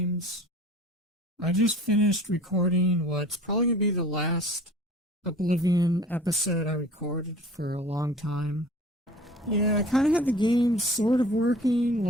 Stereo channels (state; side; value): normal; both; correlation 0.45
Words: I just finished recording what's probably going to be the last Oblivion episode I recorded for a long time. Yeah, I kind of had the game sort of working,